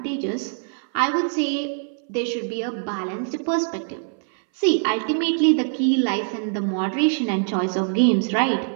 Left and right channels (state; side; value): silent; left; 60 dB below the other